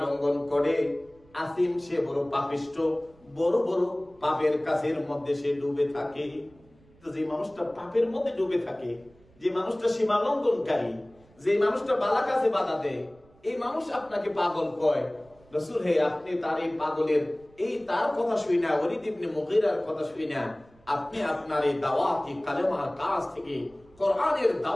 লঙ্ঘন করে। আসিম, সে বড় পাপিষ্ঠ, বড় বড় পাপের কাজের মধ্যে সে ডুবে থাকে। তো যে মানুষটা পাপের মধ্যে ডুবে থাকে, যে মানুষটা সীমা লঙ্ঘনকারী, যে মানুষটা ভালো কাজে বাধা দেয়, এই মানুষ আপনাকে পাগল কয়। রাসূল, হে আপনি তার এই পাগলের তার কথা শুই না, ওয়ালিদ ইবনে মুগীরার কথা শুই না, আপনি আপনার এই দাওয়াতি কালেমার কাজ থেকে, কোরআনের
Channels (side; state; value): right; noise; rumble, 29 dB below the sound